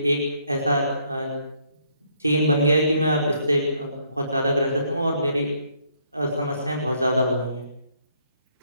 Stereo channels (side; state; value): both; inverted; correlation -0.69